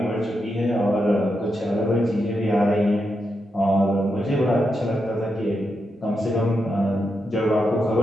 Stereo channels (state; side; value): normal; both; correlation 0.85